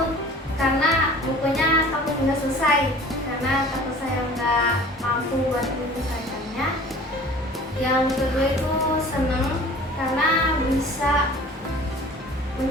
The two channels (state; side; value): normal; both; correlation 0.46